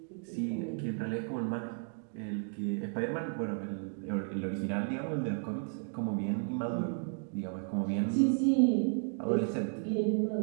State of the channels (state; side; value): silent; left; 55 dB below the other